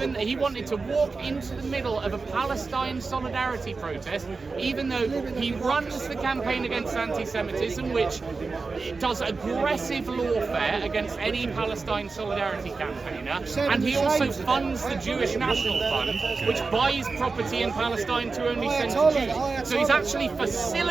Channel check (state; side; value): quieter; left; 4.2 dB